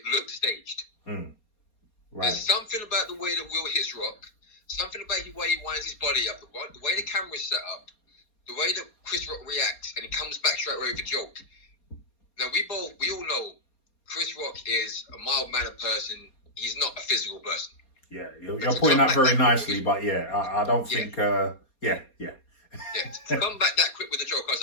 looked staged. Right. There's something about the way that Will hits Rock, something about the way he winds his body up, the way the camera's set up, the way that Chris Rock reacts, and he comes back straight away with a joke. Now, we all know Chris Rock is a mild-mannered person. He's not a physical person. Yeah, you're putting that very nicely, but I don't think. Yeah. To come back that quick with the joke, I was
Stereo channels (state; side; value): late; right; 4.3 ms